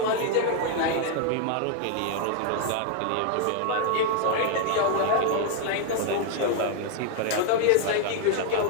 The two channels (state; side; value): different; both; correlation 0.00